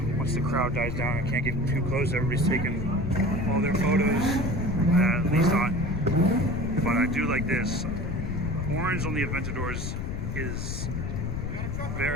once the crowd dies down. I can't get too close. Everybody's taking all their photos, at least on. But I do like this. Orange on the Aventadors is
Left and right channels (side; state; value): left; noise; rumble, 3 dB below the sound